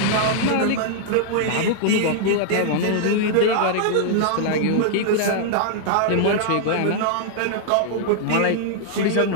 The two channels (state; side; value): different; both; correlation -0.01